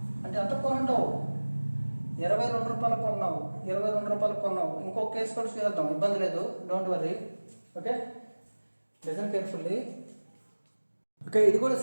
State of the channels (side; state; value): both; inverted; correlation -1.00